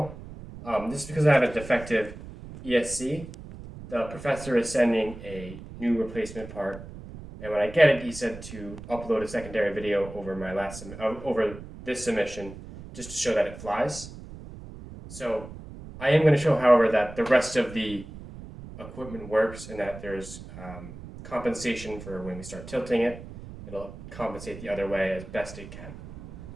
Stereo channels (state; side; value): noise; right; rumble, 14 dB below the sound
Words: This is because I have a defective ESC. The professor is sending a new replacement part, and when I get it, he said to upload a secondary video over over this submission, just to show that it flies. So I am going to show, however, that the rest of the equipment works and that there's compensation for when we start tilting it. It'll compensate the other way as best it can.